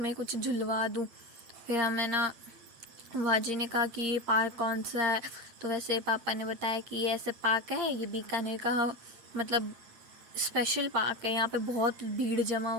कुछ झुलवा दूँ। फिर हमें ना वाजी ने कहा कि ये पार्क कौन सा है। तो वैसे पापा ने बताया कि ये ऐसे पार्क है, ये बीकानेर का मतलब स्पेशल पार्क है। यहाँ पे बहुत भीड़ जमा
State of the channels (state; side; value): late; left; 7.7 ms